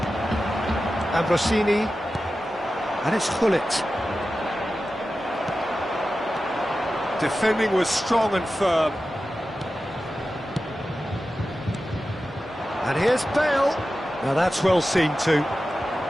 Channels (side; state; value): both; normal; correlation 0.93